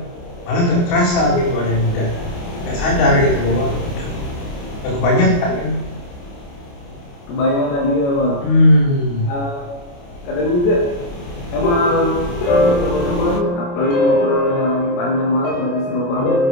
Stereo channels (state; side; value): late; right; 29 ms